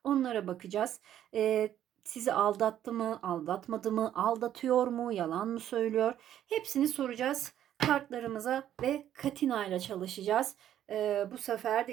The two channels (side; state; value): left; quieter; 11.1 dB